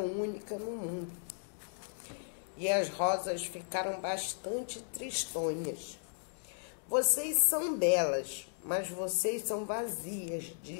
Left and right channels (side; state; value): right; silent; digital silence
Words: no mundo. E as rosas ficaram bastante tristonhas. Vocês são belas, mas vocês são vazias,